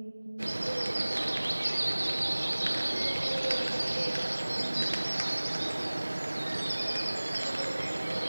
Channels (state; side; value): inverted; both; correlation -1.00